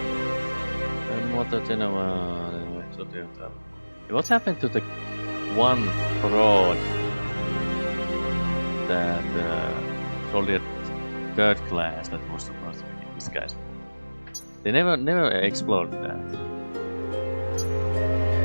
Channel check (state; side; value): inverted; both; correlation -1.00